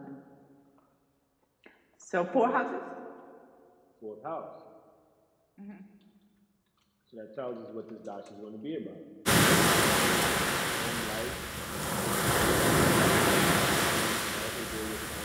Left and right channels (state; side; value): identical; both; correlation 1.00